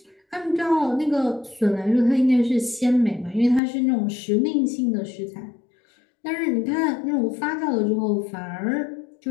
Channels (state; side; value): drops out; right; at 3.6 s